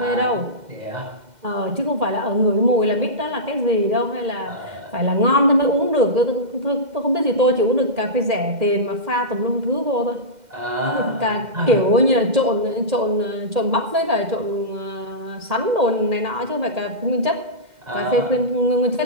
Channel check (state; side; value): late; left; 2.1 ms